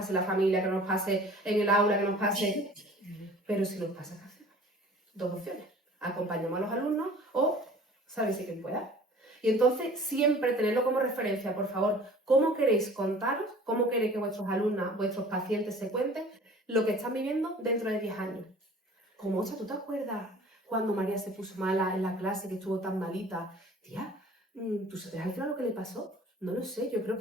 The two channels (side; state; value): both; normal; correlation 0.47